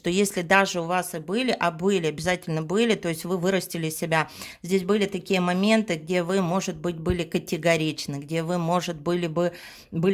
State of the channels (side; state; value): both; identical; correlation 1.00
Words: если даже у вас и были, обязательно были, то есть вы вырастили себя, здесь были такие моменты, где вы, может быть, были категоричны, где вы, может,